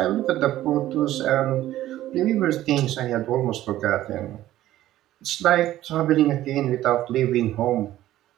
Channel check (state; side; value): quieter; left; 14.2 dB